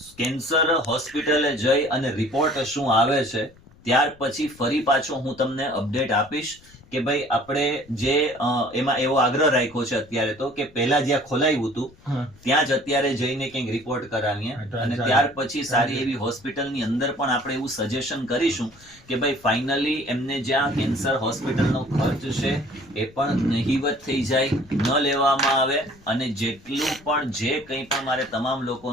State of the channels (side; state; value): left; noise; rumble, 26 dB below the sound